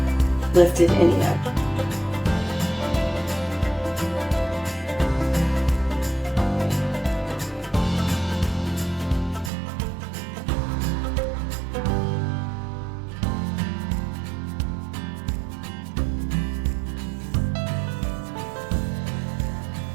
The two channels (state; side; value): drops out; left; at 9.5 s